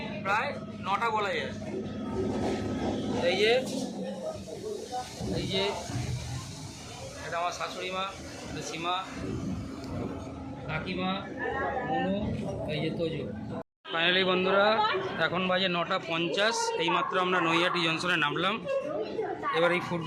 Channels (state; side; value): identical; both; correlation 1.00